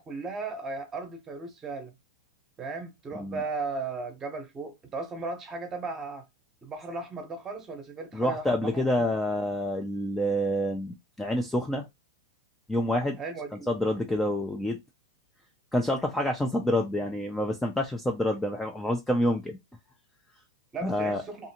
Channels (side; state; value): both; normal; correlation 0.71